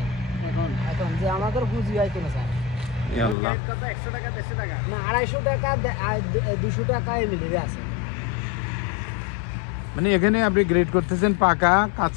এখন এখন যে আমাদের পুঁজি হয় কেন স্যার কত 100 টাকা 150 টাকা না 250 টাকা 200 টাকায় মিলিয়ে আছে মানে এখানে আপনি গ্রেড করতেছেন পাকা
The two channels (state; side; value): drops out; right; at 3.4 s